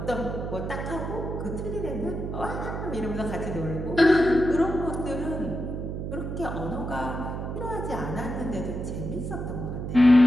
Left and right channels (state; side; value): noise; right; hum, 5 dB below the sound